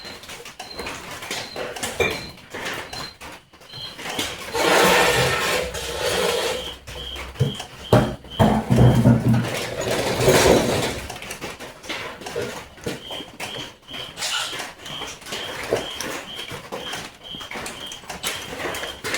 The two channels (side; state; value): both; identical; correlation 1.00